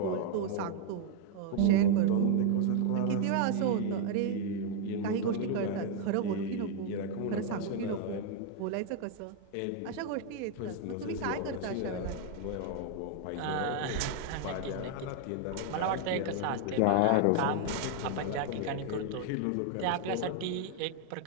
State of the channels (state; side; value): different; both; correlation 0.00